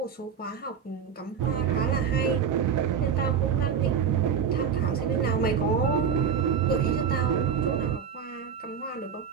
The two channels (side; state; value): left; quieter; 7.1 dB